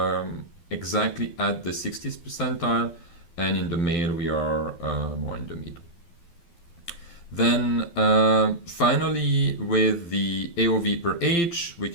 exactly at the 60th percentile, and in the male we are more in the middle. Then finally Similarly, with the AOV per age, we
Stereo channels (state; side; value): late; right; 12 ms